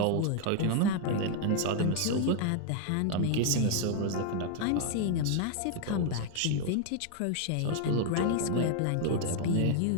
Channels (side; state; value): both; different; correlation 0.00